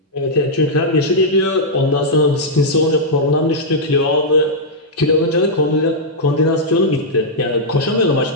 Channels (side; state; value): both; normal; correlation -0.07